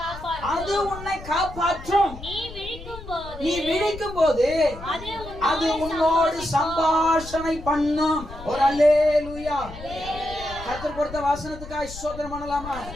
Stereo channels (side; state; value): left; noise; rumble, 13 dB below the sound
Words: அது உன்னை காப்பாற்றும். நீ விழிக்கும்போது அது உன்னோடு சம்பாஷணை பண்ணும். ஒரு அல்லேலூயா. கர்த்தர் கொடுத்த வசனத்துக்காக ஸ்தோத்திரம் பண்ணலாமா?